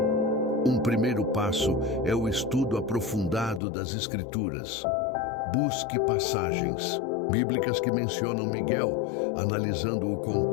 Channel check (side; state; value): right; drops out; at 3.6 s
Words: Um primeiro passo é o estudo aprofundado das Escrituras. Busque passagens bíblicas que mencionam Miguel, analisando o